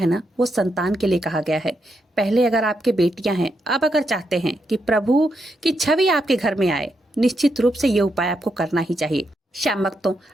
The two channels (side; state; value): both; normal; correlation 0.82